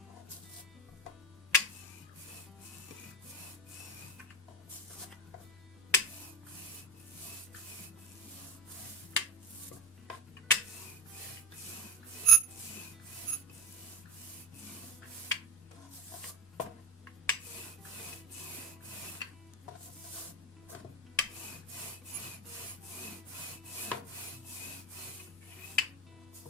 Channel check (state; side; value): normal; both; correlation 0.18